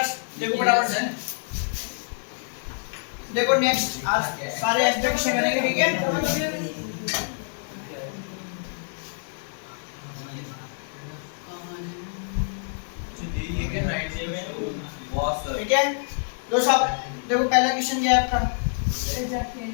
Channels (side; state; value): right; silent; digital silence